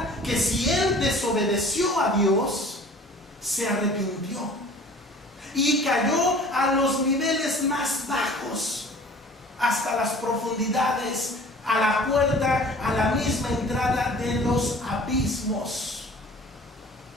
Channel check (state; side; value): normal; both; correlation 0.47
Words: que si él desobedeció a Dios, se arrepintió y cayó a los niveles más bajos, hasta las profundidades, a la puerta, a la misma entrada de los abismos.